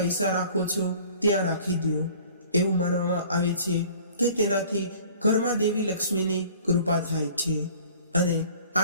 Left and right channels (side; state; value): both; inverted; correlation -0.50